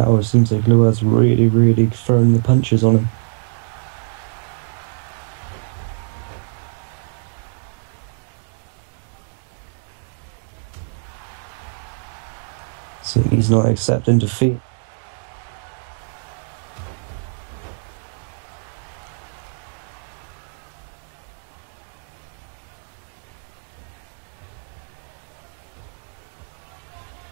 it seems like Lua's really, really throwing the punches on him. Yeah, and wait. And then the big boot. So far, Lua really taking control so far, but as I said, the Amazing Jess trying to get back into it. So he's not accepting defeat. Yeah, and then another big boot. And now, looking to continue on the attack here and just really attacking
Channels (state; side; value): silent; left; digital silence